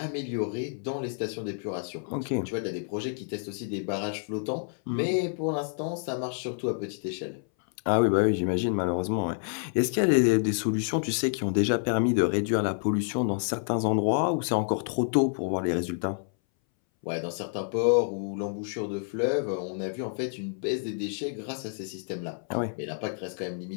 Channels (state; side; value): silent; right; 59 dB below the other